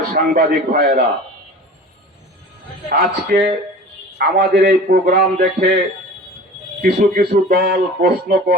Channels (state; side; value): normal; both; correlation 0.40